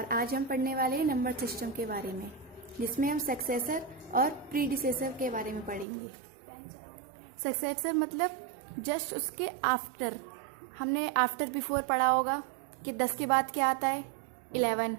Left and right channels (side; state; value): left; drops out; at 5.9 s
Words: आज हम पढ़ने वाले हैं नंबर सिस्टम के बारे में, जिसमें हम सक्सेसर और प्रीडिसेसर के बारे में पढ़ेंगे। सक्सेसर मतलब जस्ट उसके आफ्टर। हमने आफ्टर बिफोर पढ़ा होगा कि 10 के बाद क्या आता है, 11।